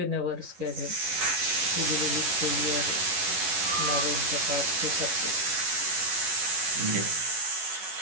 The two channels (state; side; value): late; left; 11 ms